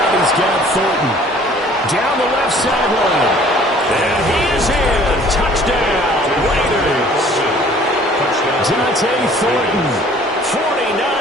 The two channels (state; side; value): normal; both; correlation 0.53